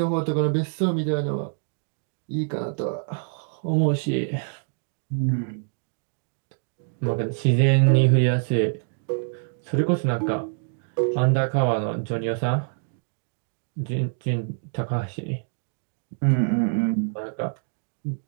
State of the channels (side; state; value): left; silent; digital silence